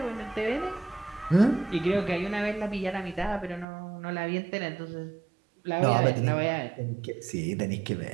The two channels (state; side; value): drops out; left; at 3.7 s